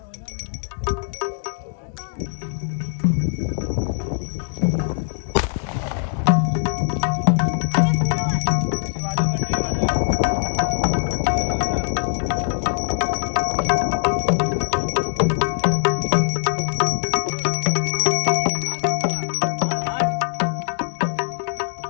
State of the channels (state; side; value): silent; right; 64 dB below the other